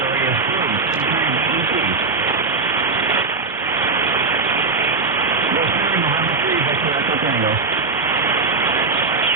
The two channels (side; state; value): left; quieter; 4.2 dB